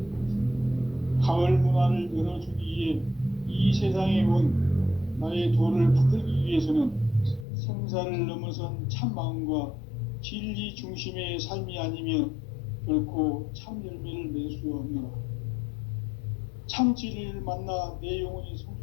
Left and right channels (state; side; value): drops out; right; at 7.5 s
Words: 가을 문화를 열어주기 위해 이 세상에 온 나의 도를 붙들기 위해서는 생사를 넘어선 참 마음과 진리 중심의 삶이 아니면 결코 참 열매를 맺을 수 없노라. 참 진리를 만나 내 영혼이